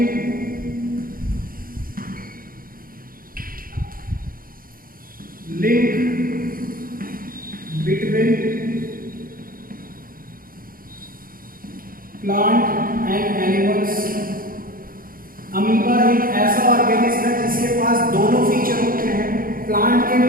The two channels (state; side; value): late; left; 0.41 ms